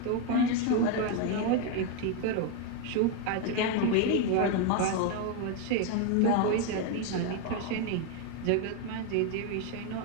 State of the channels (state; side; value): different; both; correlation 0.01